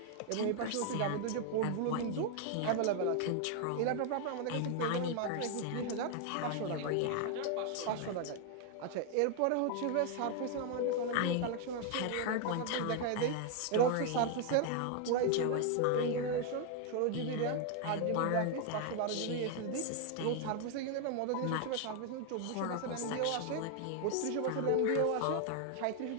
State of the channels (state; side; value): different; both; correlation 0.01